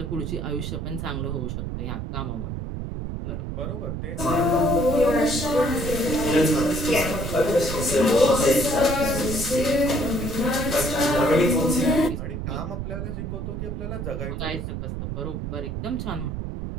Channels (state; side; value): noise; right; rumble, 5 dB below the sound